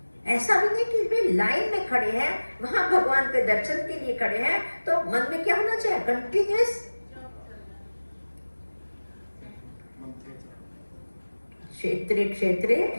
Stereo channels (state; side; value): inverted; both; correlation -1.00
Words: ऐसा भी नहीं कि वे लाइन में खड़े हैं, वहां भगवान के दर्शन के लिए खड़े हैं, तो मन में क्या होना चाहिए, कंटिन्यूअस। क्षेत्रे क्षेत्रे,